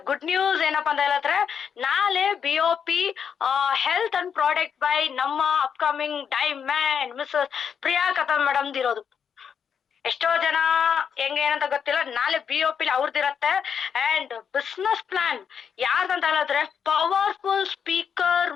ಗುಡ್ ನ್ಯೂಸ್ ಏನಪ್ಪಾ ಅಂತ ಹೇಳಿದ್ರೆ, ನಾಳೆ BOP health and product by ನಮ್ಮ upcoming diamond Mrs Priya Katham madam ಇರೋದು. ಎಷ್ಟೋ ಜನ ಹೆಂಗೆ ಏನಂತ ಗೊತ್ತಿಲ್ಲ, ನಾಳೆ BOP ಅವ್ರದ್ದಿರತ್ತೆ. ಅಂಡ್ ಬಿಸ್ನೆಸ್ ಪ್ಲಾನ್ ಯಾರ್ದಂತ ಹೇಳಿದ್ರೆ, ಪವರ್ಫುಲ್ ಸ್ಪೀಕರ್,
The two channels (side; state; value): right; quieter; 7.4 dB